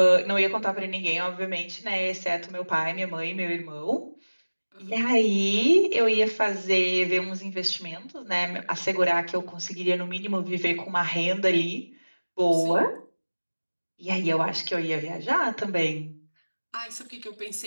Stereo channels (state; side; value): inverted; both; correlation -1.00